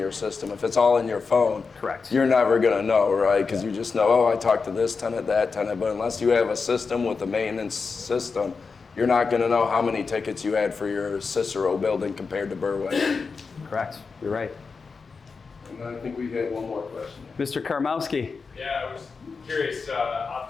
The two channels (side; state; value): right; quieter; 4.8 dB